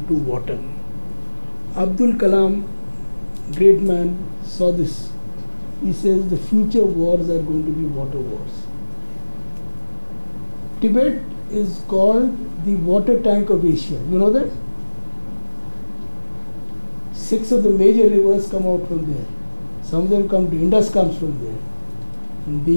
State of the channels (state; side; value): inverted; both; correlation -1.00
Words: to water. Abdul Kalam, great man, saw this. He says the future wars are going to be water wars. Tibet is called the water tank of Asia. You know that? 6 of the major rivers come out from there. Some of them come to Indus comes from there.